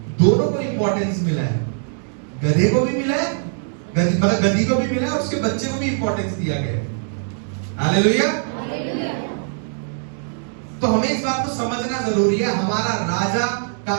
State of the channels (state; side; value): silent; left; digital silence